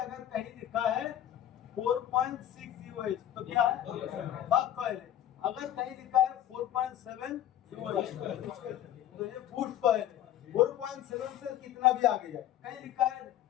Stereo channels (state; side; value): quieter; right; 11.8 dB